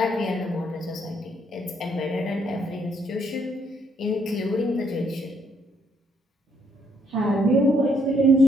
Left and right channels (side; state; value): both; normal; correlation 0.70